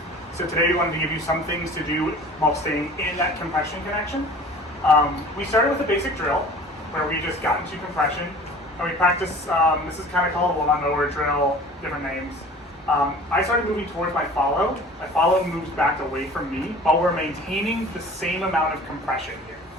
So today we wanted to give you some things to do while staying in that compression connection. We started with a basic drill where we just got into compression and we practiced, this is kind of called a lawnmower drill, different names. I started moving towards my follow. My follow moves back away from me while we're maintaining the same amount of compression here.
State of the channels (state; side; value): normal; both; correlation 0.44